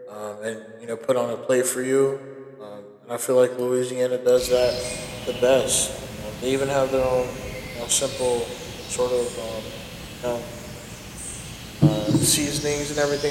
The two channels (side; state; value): both; identical; correlation 1.00